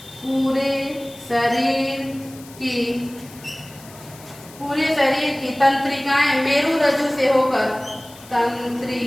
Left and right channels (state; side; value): noise; left; hiss, 20 dB below the sound